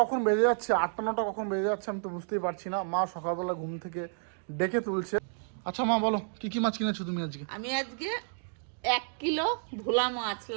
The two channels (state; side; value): silent; left; digital silence